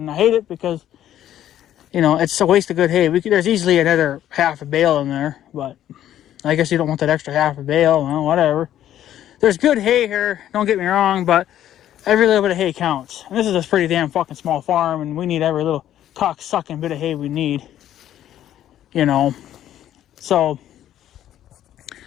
I hate it because, you know, it's a waste of good hay. There's easily another half a bale in there, but I guess you don't want that extra half a bale. Well, whatever. There's good hay here, don't get me wrong, but every little bit of hay counts. And this is a pretty damn fucking small farm, and we need every little cock-sucking bit of hay we need, you know. So,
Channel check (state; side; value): quieter; right; 11.7 dB